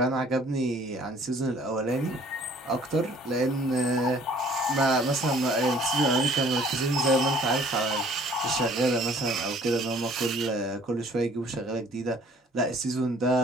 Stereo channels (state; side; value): normal; both; correlation 0.56